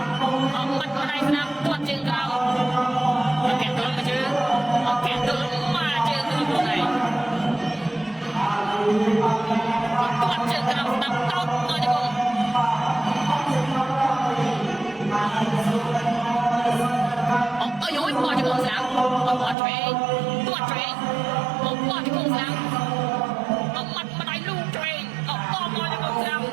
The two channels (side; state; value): left; drops out; at 19.6 s